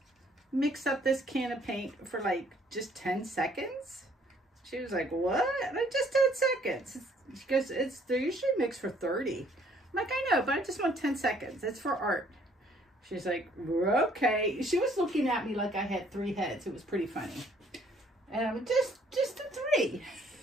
mix up this can of paint for like just 10 seconds? She was like, what? Like, just 10 seconds. She goes, they're usually mixed for 30. I'm like, I know, but I just want 10 seconds. It's for art. She's like, okay. She was looking at me like I had 3 heads. It was pretty funny. And I was just a 3.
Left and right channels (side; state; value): both; normal; correlation 0.62